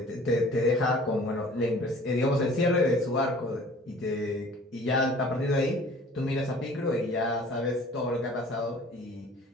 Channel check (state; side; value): normal; both; correlation 0.49